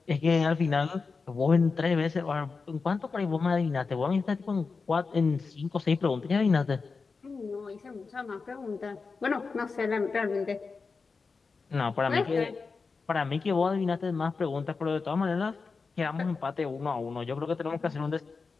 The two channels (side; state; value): right; quieter; 4.6 dB